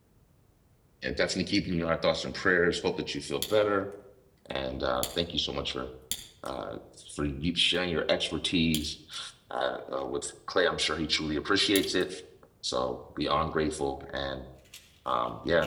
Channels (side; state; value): both; identical; correlation 1.00